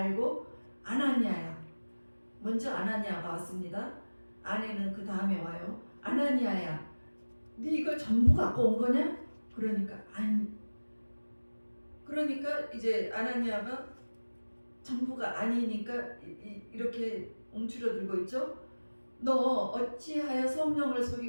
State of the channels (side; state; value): both; inverted; correlation -1.00